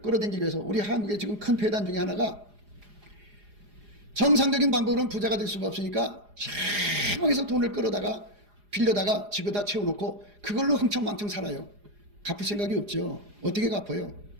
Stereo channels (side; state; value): left; late; 4.9 ms